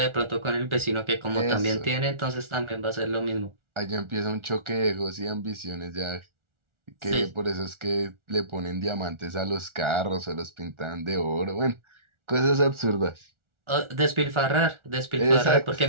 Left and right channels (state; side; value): late; left; 1.4 ms